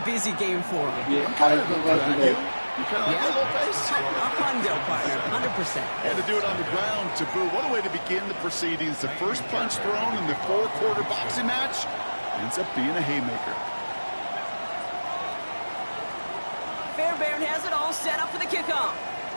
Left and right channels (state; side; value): inverted; both; correlation -1.00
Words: busy game for them. I'm kind of like you. You kind of like a little pace. A hundo, partner, 100%. And to do it on the ground, to boot. What a way to begin the proceedings. The first punch thrown in the 4-quarter boxing match ends up being a haymaker. Fairbairn has it all set up for the kickoff.